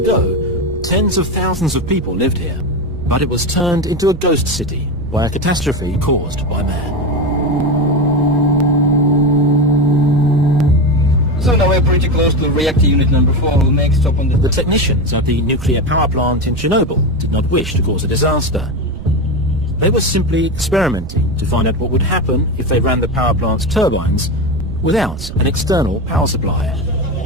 ago, tens of thousands of people lived here, but it was turned into a ghost city by a catastrophe caused by man. So now we're pretty close to reactor unit number 4. We'll make stop on The technicians at the nuclear power plant in Chernobyl did not wish to cause a disaster. They were simply experimenting to find out what would happen if they ran the power plant's turbines without an external power supply.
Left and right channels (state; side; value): noise; right; rumble, 12 dB below the sound